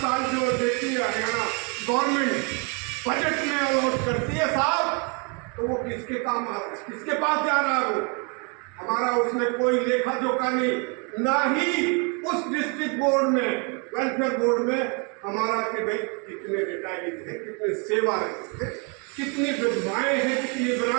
जो देती है हरियाणा गवर्नमेंट बजट में अलॉट करती है साहब, तो वो किसके काम, किसके पास जा रहा है? वो हमारा उसमें कोई लेखा जोखा नहीं, ना ही उस डिस्ट्रिक्ट बोर्ड में, वेलफेयर बोर्ड में हमारा कि भाई कितने रिटायरीज हैं, कितने सेवारत हैं, कितनी विधवाएं हैं, कितनी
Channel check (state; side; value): quieter; left; 35.0 dB